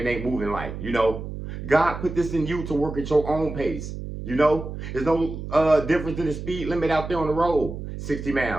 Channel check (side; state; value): right; noise; hum, 8 dB below the sound